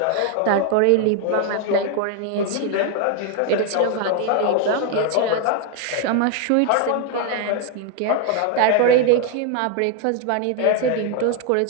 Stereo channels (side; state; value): both; different; correlation 0.01